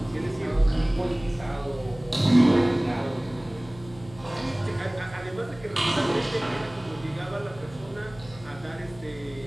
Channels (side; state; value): left; noise; hum, 20 dB below the sound